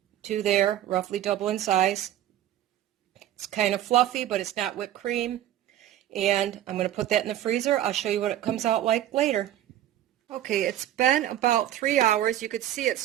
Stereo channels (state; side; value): quieter; left; 12.3 dB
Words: to there, roughly double in size. It's kind of fluffy, but it's not whipped cream. And I'm going to put that in the freezer. I'll show you what it comes out like later. Okay, it's been about 3 hours. You could see it's